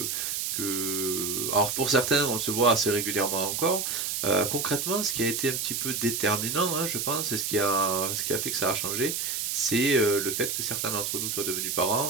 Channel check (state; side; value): noise; right; hiss, 1 dB below the sound